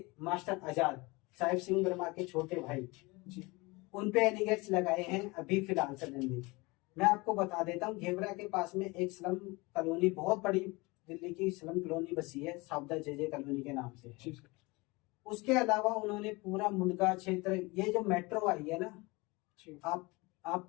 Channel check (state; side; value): quieter; right; 24.6 dB